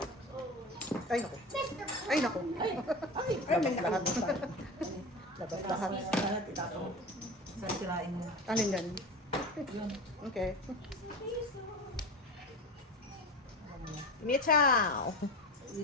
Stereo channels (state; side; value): normal; both; correlation 0.29